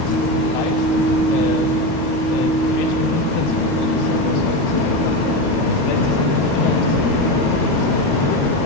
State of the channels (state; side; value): late; right; 13 ms